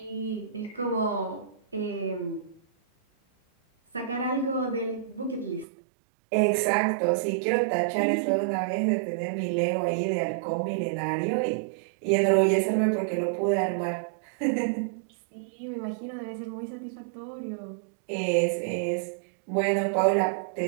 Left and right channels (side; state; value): left; drops out; at 5.7 s